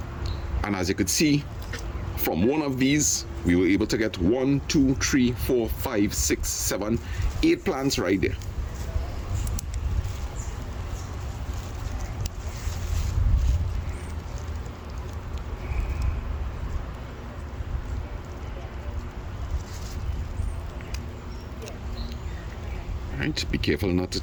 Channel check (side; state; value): both; identical; correlation 1.00